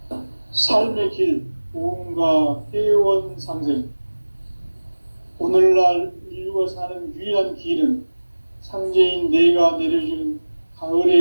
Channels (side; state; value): both; inverted; correlation -1.00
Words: 삶의 길, 보험과 회원 상생. 오늘날 인류가 사는 유일한 길은 상제인 내가 내려준